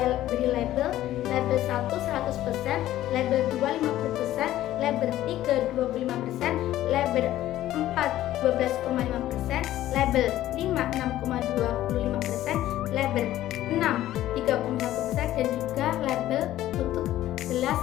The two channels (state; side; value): quieter; right; 13.9 dB